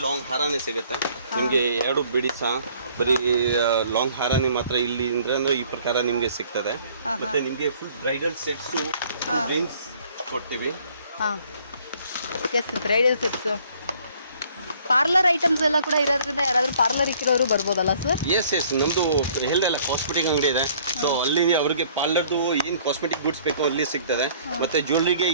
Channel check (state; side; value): inverted; both; correlation -0.58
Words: ಲಾಂಗ್ ಹಾರನೇ ಸಿಗುತ್ತೆ ನಿಮಗೆ. 2 ಬಿಡಿಸ ಬರೀ ಲಾಂಗ್ ಹಾರನೇ ಮಾತ್ರ ಇಲ್ಲಿ ಅಂದ್ರೆ ಈ ಪ್ರಕಾರ ನಿಮಗೆ ಸಿಗ್ತದೆ. ಮತ್ತೆ ನಿಮಗೆ ಫುಲ್ ಬ್ರೈಡಲ್ ಸೆಟ್ಸು ರೇಂಜ್ ಕೊಡ್ತೀವಿ. ಬ್ರೈಡಲ್ ಸೆಟ್ಸ್, ಪಾರ್ಲರ್ ಐಟಮ್ಸ್ ಎಲ್ಲ ಕೂಡ ಇರೋದ್ರಿಂದ ಯಾರಾದ್ರೂ ಪಾರ್ಲರ್ ಇಕ್ಕಿರೋರು ಬರ್ಬೋದಲ್ಲ ಸರ್? ಎಸ್ ನಮ್ದು ಹೇಳ್ದಲ್ಲ ಕಾಸ್ಮೆಟಿಕ್ ಅಂಗಡಿ ಇದೆ. ಸೊ ಅಲ್ಲಿ ಅವ್ರಿಗೆ ಪಾರ್ಲರ್ದು ಏನು ಕಾಸ್ಮೆಟಿಕ್ ಗುಡ್ಸ್ ಬೇಕೋ ಅಲ್ಲಿ ಸಿಗ್ತದೆ. ಮತ್ತೆ ಜ್ಯುವೆಲ್ರಿಗೆ